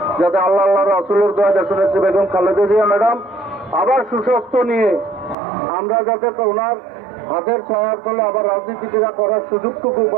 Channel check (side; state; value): left; drops out; at 5.4 s